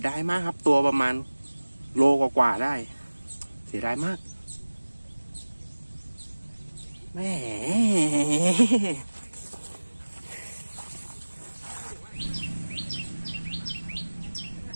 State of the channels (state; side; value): inverted; both; correlation -1.00